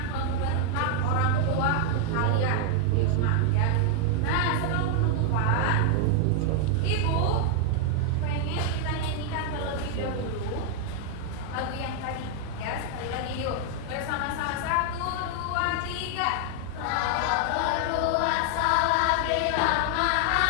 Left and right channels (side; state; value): both; different; correlation 0.00